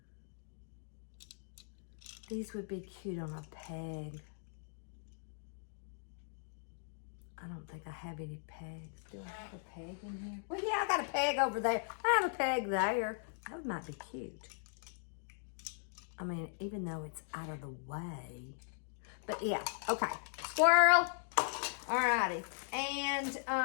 These would be cute on a peg. I don't think I have any pegs. Do I have a peg in here? Well, yeah, I got a peg over there. I have a peg there. That might be cute. I mean, even though it's out of the way. But yeah, okay. Squirrel. Alrighty. And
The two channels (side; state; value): right; silent; digital silence